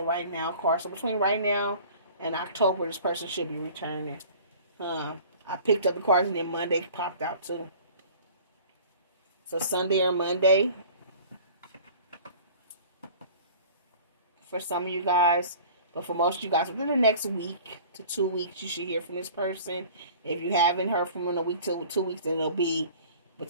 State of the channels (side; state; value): both; inverted; correlation -0.45